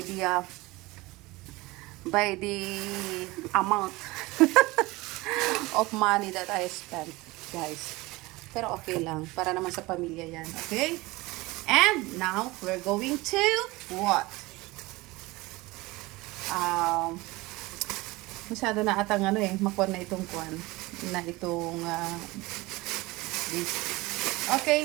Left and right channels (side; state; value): left; quieter; 21.6 dB